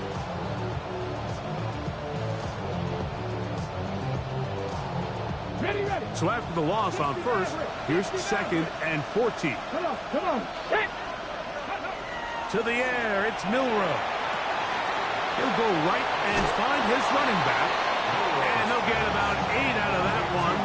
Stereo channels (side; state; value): both; identical; correlation 1.00